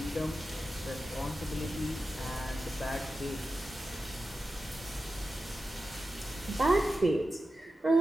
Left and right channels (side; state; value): both; normal; correlation 0.92